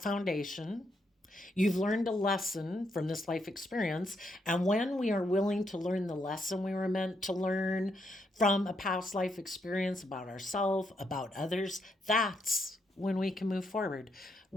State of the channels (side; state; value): both; normal; correlation 0.78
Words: foundation. You've learned a lesson from this life experience. And when we are willing to learn the lesson we were meant to learn from a past life experience about ourselves, about others, that's when we can move forward.